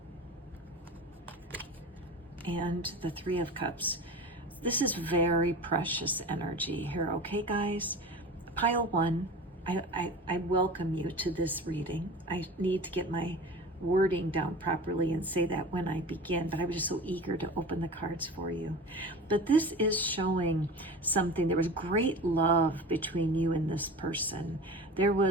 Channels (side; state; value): both; normal; correlation 0.34